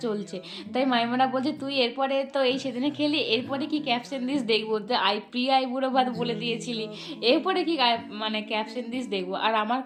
চলছে। তাই মাইমারা বলছে তুই এরপরে তো এই সেদিনে খেলি, এরপরে কি ক্যাপশন দিস দেখবো, যে প্রিয় আইবুড়ো ভাত বলে দিয়েছিলি, এরপরে কি মানে ক্যাপশন দিস দেখবো। আর আমার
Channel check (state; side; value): identical; both; correlation 1.00